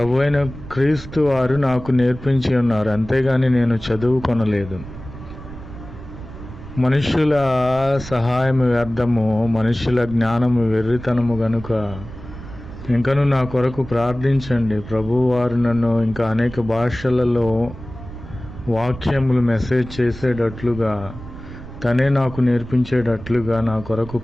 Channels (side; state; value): right; noise; rumble, 13 dB below the sound